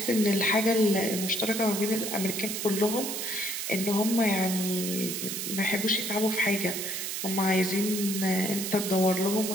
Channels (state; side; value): noise; right; hiss, 4 dB below the sound